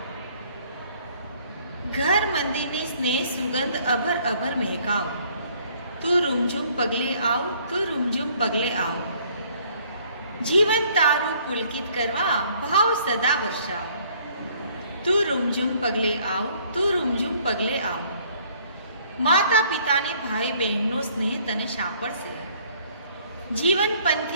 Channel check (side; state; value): both; inverted; correlation -0.60